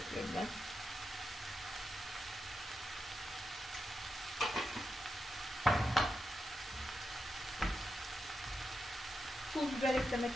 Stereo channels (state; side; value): normal; both; correlation 0.88